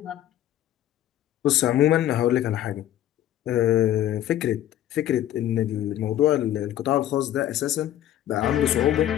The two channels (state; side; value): quieter; right; 12.3 dB